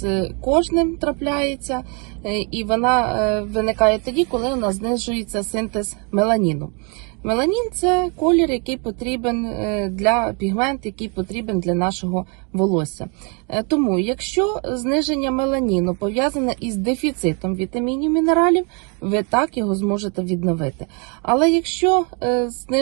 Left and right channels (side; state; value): left; quieter; 35.1 dB